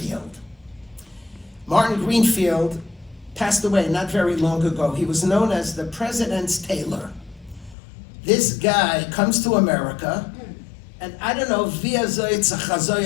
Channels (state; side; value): drops out; right; at 7.8 s